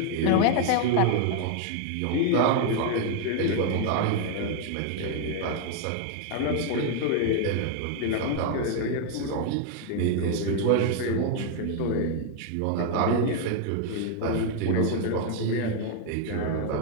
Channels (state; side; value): different; both; correlation 0.00